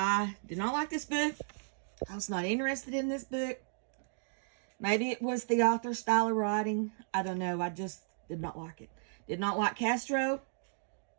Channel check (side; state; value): left; silent; digital silence